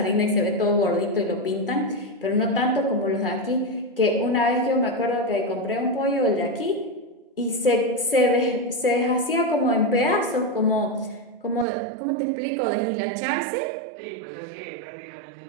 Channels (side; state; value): left; drops out; at 11.7 s